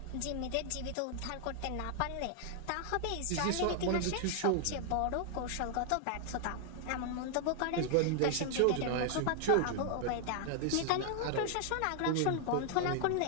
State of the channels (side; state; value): both; different; correlation 0.00